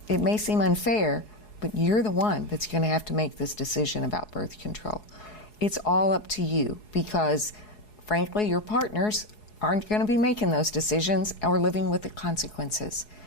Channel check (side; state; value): right; late; 4.7 ms